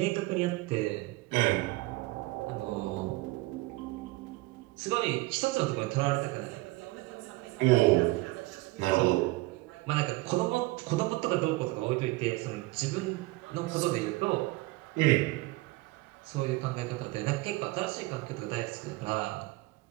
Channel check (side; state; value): left; quieter; 21.2 dB